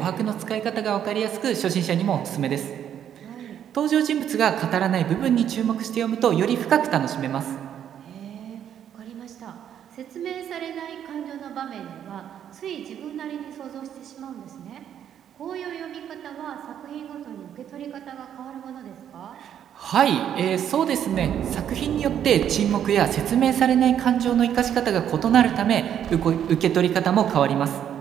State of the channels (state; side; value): quieter; left; 9.6 dB